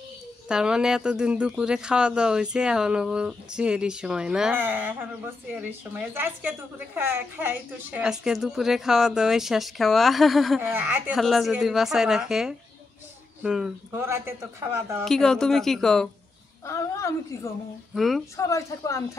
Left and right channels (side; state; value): right; quieter; 3.6 dB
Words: তার মানে এতদিন দুপুরে খাওয়া দাওয়া হয়েছে, এখনো চিয়ারির সময় না? এখনো চিয়ারির সময়। আজকে দুপুরে খাই তো শেষ। আজকে দুপুরে খাওয়া দাওয়া শেষ খাওয়া, আল্লাহ যদি বাঁচায় রাখে। ভোরাতে তো খাওয়া দাওয়া। কি কও তুমি, কি কও? আমি কি কমু, সবাই থাকবো আমি